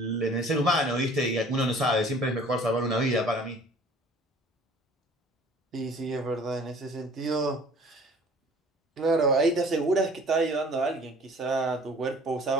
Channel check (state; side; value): normal; both; correlation 0.50